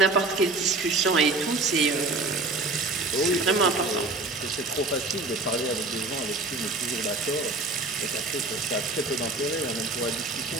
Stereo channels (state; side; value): quieter; left; 3.2 dB